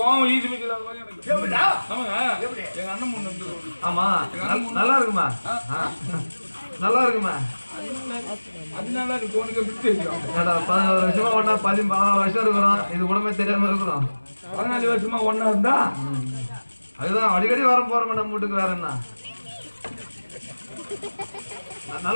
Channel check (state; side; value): inverted; both; correlation -1.00